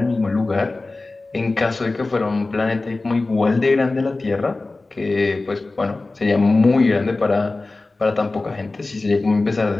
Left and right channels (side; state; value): right; quieter; 3.3 dB